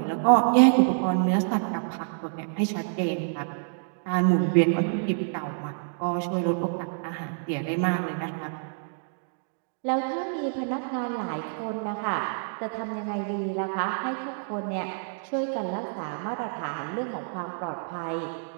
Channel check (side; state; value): left; silent; digital silence